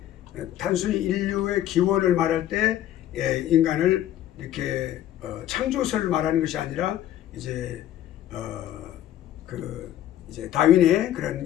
단순히 인류의 기원을 말할 때 인간을 이렇게 창조설을 말하는 것이 아니라 이제 이제 다윈의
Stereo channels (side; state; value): right; quieter; 12.2 dB